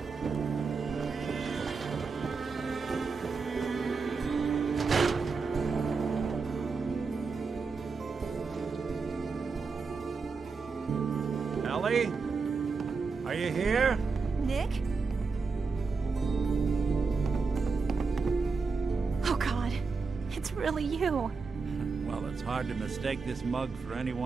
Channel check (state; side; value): quieter; left; 4.7 dB